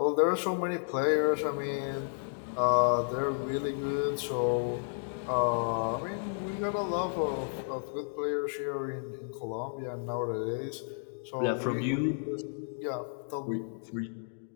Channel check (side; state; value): right; silent; digital silence